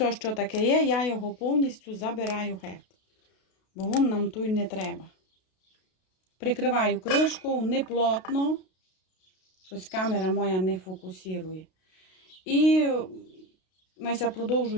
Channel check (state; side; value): late; right; 32 ms